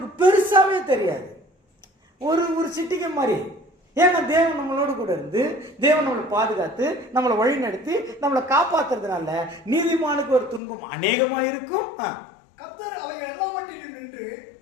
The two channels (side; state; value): right; drops out; at 10.6 s